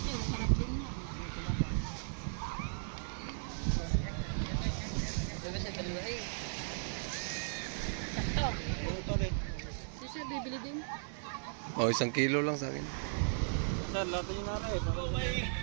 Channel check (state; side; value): silent; left; digital silence